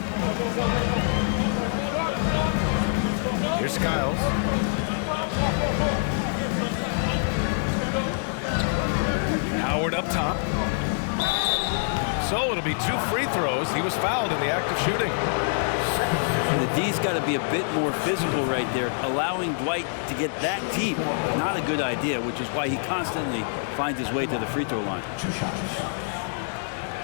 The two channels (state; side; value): silent; right; 61 dB below the other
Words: Here's Skiles. Howard up top. So it'll be 2 free throws. He was fouled in the act of shooting. The D's got to be a bit more physical right there. Allowing Dwight to get that deep, not a good idea, which is why he constantly finds his way to the free throw line. 2 shots.